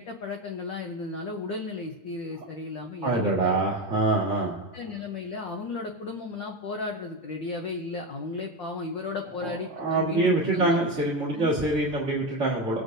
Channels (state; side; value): normal; both; correlation 0.17